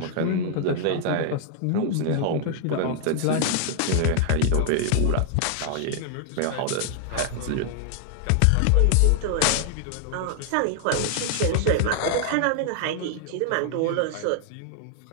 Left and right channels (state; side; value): different; both; correlation -0.01